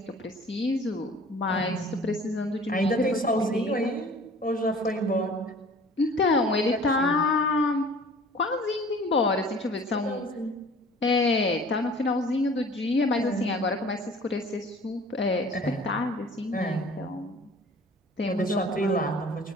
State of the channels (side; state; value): both; normal; correlation 0.48